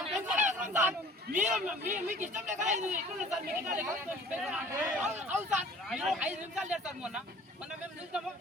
మీకు ఇష్టం లేక సార్ సార్ 5 నిమిషాలు లేదు సార్ మొన్న మేము చూస్తాము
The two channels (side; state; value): both; normal; correlation 0.49